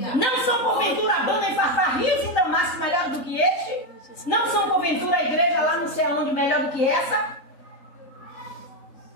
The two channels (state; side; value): late; right; 3.8 ms